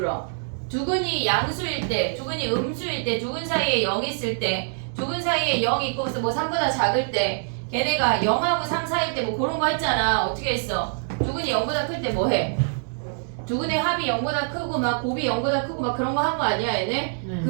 두 근이 양수일 때, 두 근이 음수일 때, 두 근 사이에 0 있을 때, 두 근 사이에 0 있고 뭐 3보다 작을 때 걔네가 0하고 3 사이일 때 뭐 그런 거 했잖아. 어떻게 했어? 두 근이 0보다 클 때 뭐 해? 두 근의 합이 0보다 크고 막 곱이 0보다 크고 막 그런 거 한 거 아니야 얘네?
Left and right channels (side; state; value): left; silent; digital silence